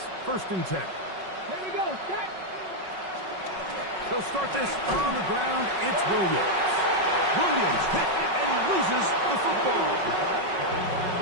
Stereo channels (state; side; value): late; left; 5.4 ms